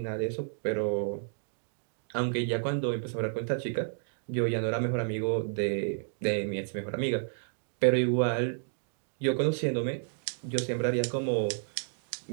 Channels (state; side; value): silent; left; digital silence